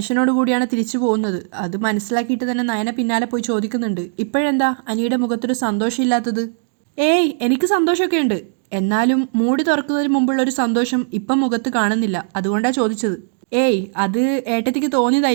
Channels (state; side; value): silent; left; digital silence